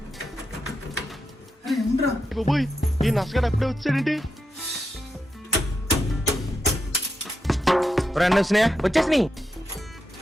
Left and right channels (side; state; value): both; normal; correlation 0.85